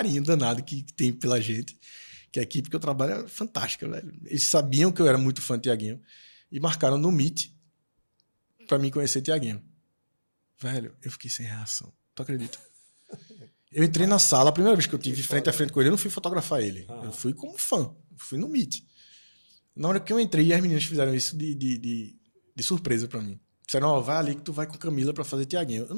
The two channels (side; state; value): both; inverted; correlation -1.00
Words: danado que tem pela gente, que a equipe que eu trabalho é fantástica, velho. Eles sabiam que eu era muito fã de Tiaguinho e marcaram no Meet pra mim conhecer Tiaguinho. Velho, eu fiquei sem reação. Tu acredita? Eu entrei na sala, a primeira vez que eu tive frente a frente com ele, eu não fui fotografar ele. Eu fui como fã. Fui no Meet. Na hora que eu entrei, as meninas fizeram isso de surpresa pra mim. Disseram, ó, vai ali que tu vai com Camila pra fazer Tiaguinho. Eu